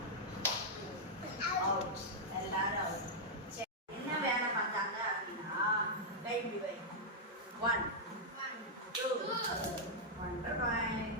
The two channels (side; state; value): both; normal; correlation -0.06